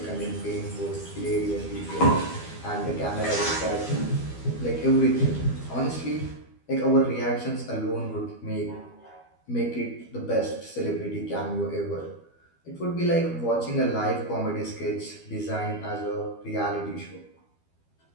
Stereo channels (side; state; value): right; late; 12 ms